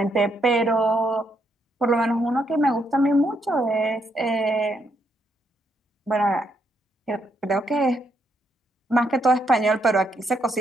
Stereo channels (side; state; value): both; normal; correlation 0.76